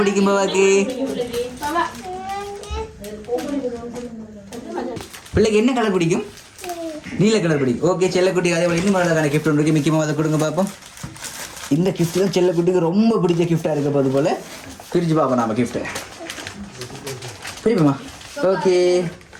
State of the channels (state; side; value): identical; both; correlation 1.00